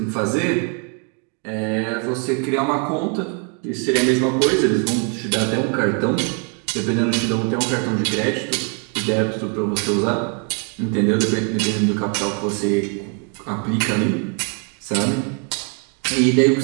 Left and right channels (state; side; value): quieter; left; 39.1 dB